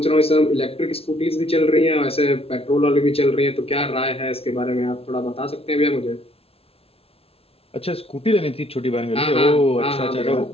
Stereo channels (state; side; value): late; right; 0.28 ms